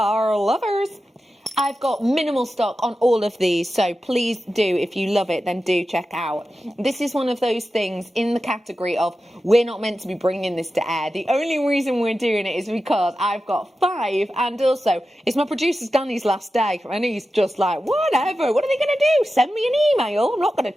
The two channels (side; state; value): both; normal; correlation 0.92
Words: lovers. I've got minimal stock on all of these, so please do, if you love it, then do check out. This is one of those things in the category of we're not meant to be bringing this to air. The only reason we're doing it is because I've got 5, and also it's my producer Danny's last day, and he's just like, whatever, what are they going to do? Send me an email? I'm not going